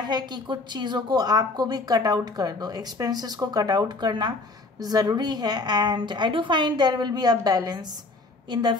कि कुछ चीज़ों को आपको भी कट आउट कर दो, एक्सपेंसेस को कट आउट करना ज़रूरी है। And I do find there will be a balance in the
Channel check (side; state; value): right; quieter; 3.3 dB